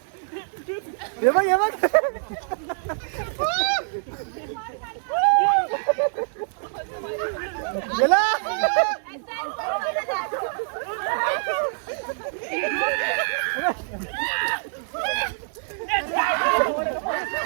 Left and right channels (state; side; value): silent; left; digital silence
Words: हे बघ हे बघ.